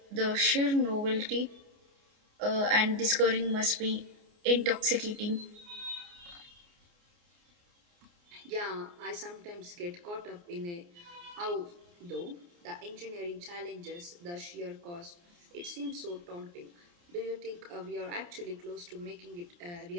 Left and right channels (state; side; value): late; left; 29 ms